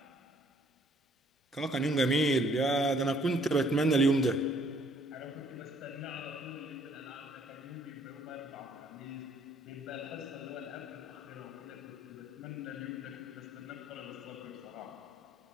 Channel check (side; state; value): both; normal; correlation 0.63